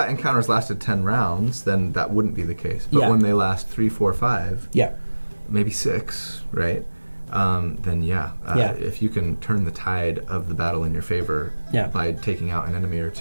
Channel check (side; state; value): both; inverted; correlation -1.00